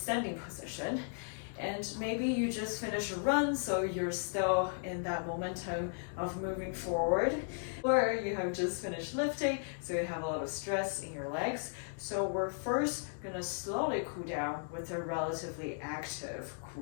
position, and maybe you just finish a run, so you're still in that momentum of moving forward, or you have just finished lifting, so you have a lot of stress in your legs. So we're first gonna slowly cool down with a relatively active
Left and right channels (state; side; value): silent; right; digital silence